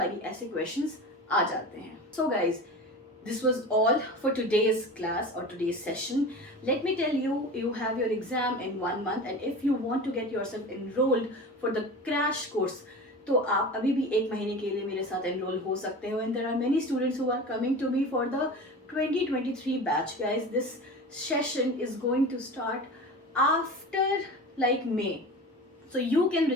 ऐसे questions आ जाते हैं. So guys, this was all for today's class or today's session. Let me tell you, you have your exam in 1 month, and if you want to get yourself enrolled for the crash course, तो आप अभी भी 1 महीने के लिए मेरे साथ enrol हो सकते हो. And there are many students who are coming to me for the 2023 batch. Guys, this session is going to start after like May, so you can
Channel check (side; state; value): both; normal; correlation 0.33